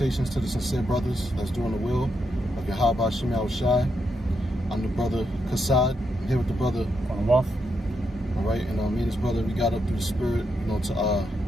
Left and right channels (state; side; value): normal; both; correlation 0.81